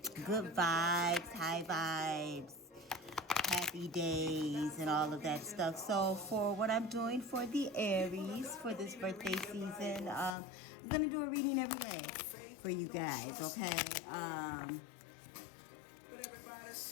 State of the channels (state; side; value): drops out; right; at 10.4 s